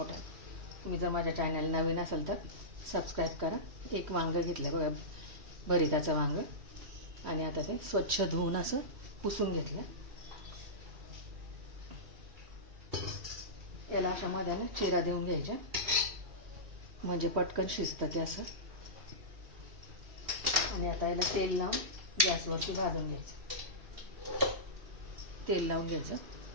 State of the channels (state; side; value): late; left; 3.1 ms